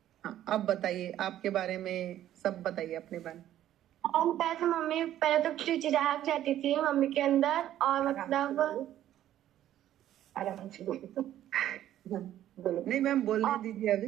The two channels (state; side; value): quieter; left; 12.3 dB